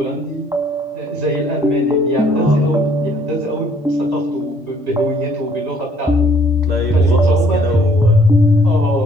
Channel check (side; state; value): both; normal; correlation 0.61